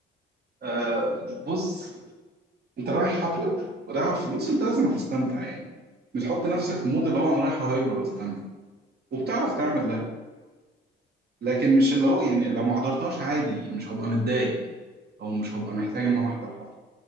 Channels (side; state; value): both; normal; correlation 0.53